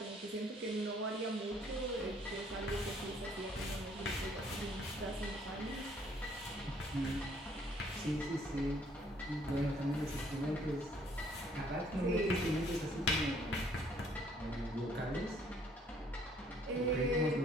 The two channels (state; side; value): normal; both; correlation 0.63